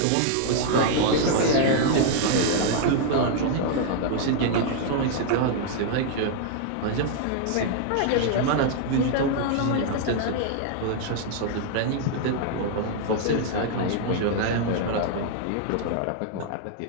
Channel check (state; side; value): different; both; correlation 0.00